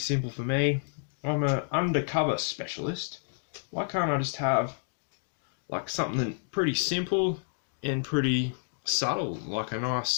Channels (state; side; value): silent; right; digital silence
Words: for me? I'm an undercover specialist. Why can't I just have like something pretty simple and pretty subtle, like a